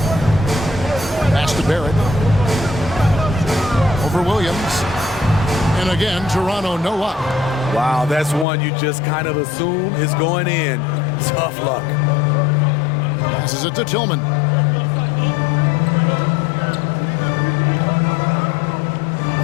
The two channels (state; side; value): drops out; right; at 8.5 s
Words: Pass to Barrett. Over Williams. And again, Toronto no up. Wow, that's one you just kind of assume is going in. Tough luck. Passes it to Tillman.